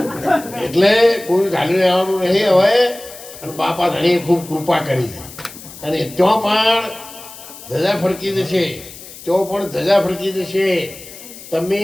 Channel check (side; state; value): left; noise; hiss, 16 dB below the sound